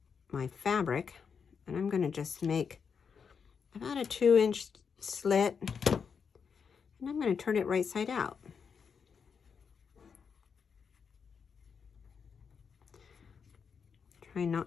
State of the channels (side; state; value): right; quieter; 6.3 dB